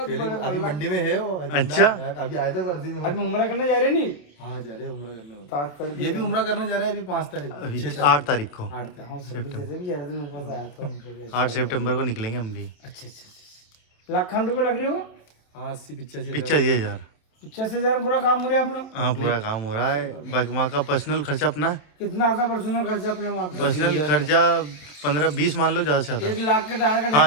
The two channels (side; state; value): right; late; 27 ms